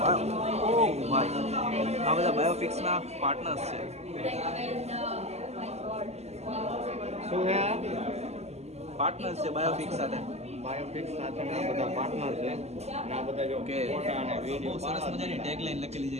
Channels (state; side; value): late; left; 0.31 ms